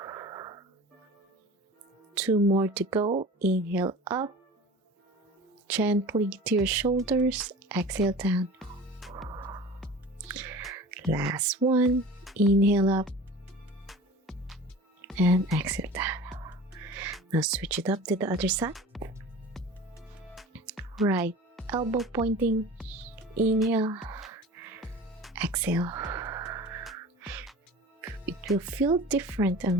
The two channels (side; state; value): both; normal; correlation 0.38